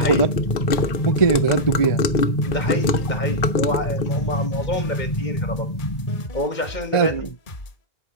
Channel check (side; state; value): right; late; 2.0 ms